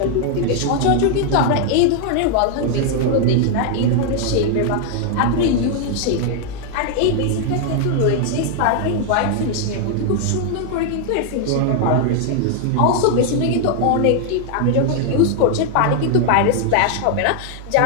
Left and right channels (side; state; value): both; different; correlation 0.00